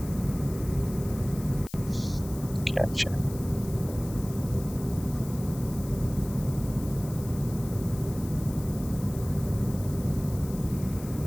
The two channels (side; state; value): left; noise; hiss, 16 dB below the sound